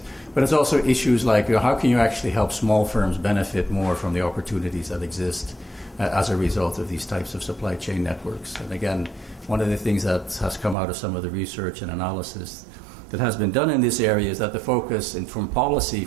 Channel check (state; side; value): drops out; left; at 10.8 s